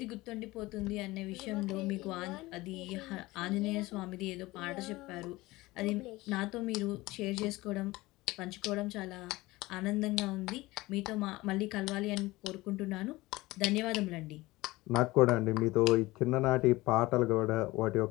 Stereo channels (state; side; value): quieter; right; 20.0 dB